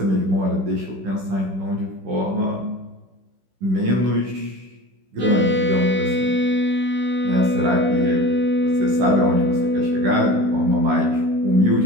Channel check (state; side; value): late; left; 16 ms